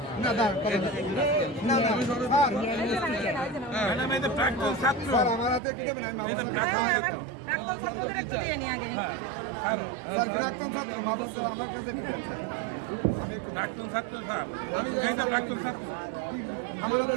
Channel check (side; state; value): left; drops out; at 5.6 s